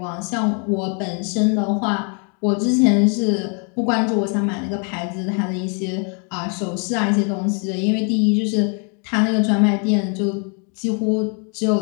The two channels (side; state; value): right; quieter; 38.8 dB